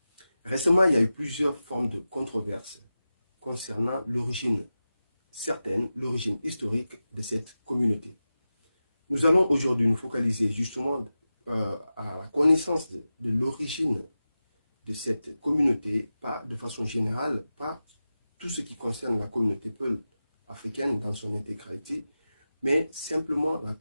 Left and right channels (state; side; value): inverted; both; correlation -0.94